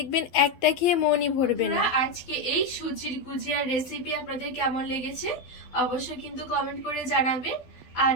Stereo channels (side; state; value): right; late; 12 ms